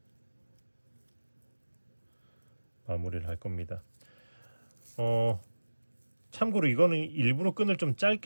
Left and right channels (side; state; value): both; inverted; correlation -1.00